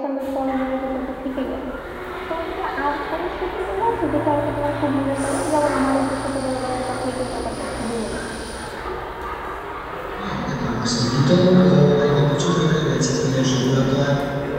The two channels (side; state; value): both; identical; correlation 1.00